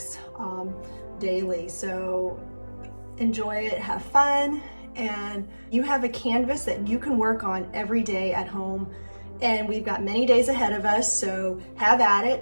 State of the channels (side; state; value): both; inverted; correlation -1.00